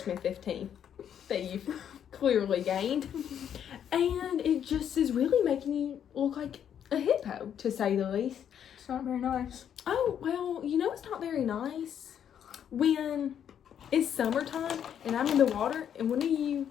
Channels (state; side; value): quieter; right; 9.1 dB